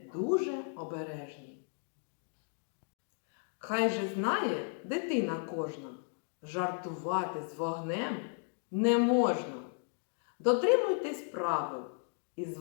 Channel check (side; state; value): right; silent; 55 dB below the other